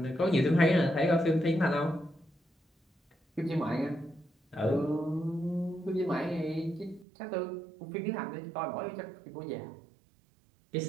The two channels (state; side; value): drops out; left; at 7.1 s